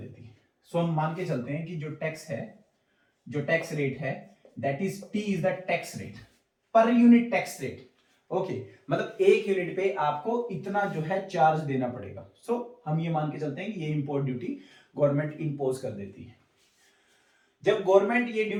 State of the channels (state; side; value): identical; both; correlation 1.00